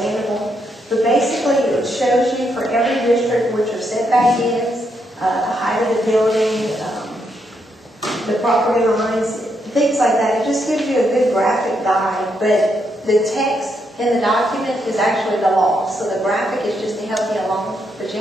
But basically, it shows you for every district what your setback is, the height of the building, the property lines, things like that. It just gives you a good graphic guide. But the text in the document is actually the law. So the graphic is just to help you along, but you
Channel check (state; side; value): normal; both; correlation 0.78